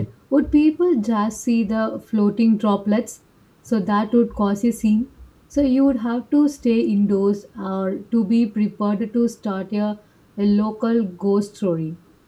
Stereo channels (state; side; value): identical; both; correlation 1.00